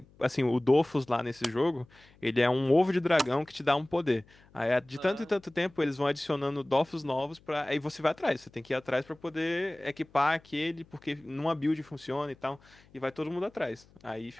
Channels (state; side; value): noise; left; hum, 28 dB below the sound